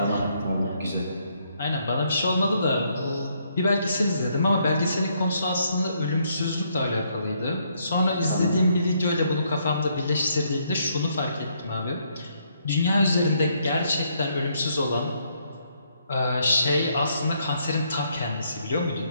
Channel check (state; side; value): inverted; both; correlation -0.72